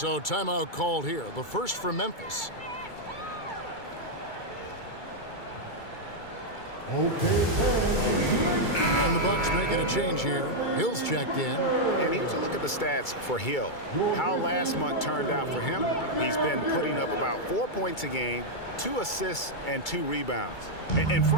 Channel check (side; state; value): right; late; 2.3 ms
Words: timeout called here. The first for Memphis. And the Bucks making a change here. Hill's checked in. And here's a look at the stats for Hill. How last month turned out for him. He's been putting up about 4 points a game, 2 assists, and 2 rebounds. And